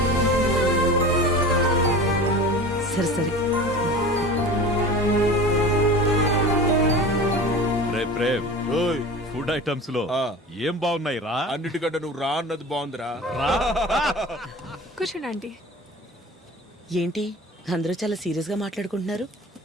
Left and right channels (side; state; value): both; normal; correlation 0.36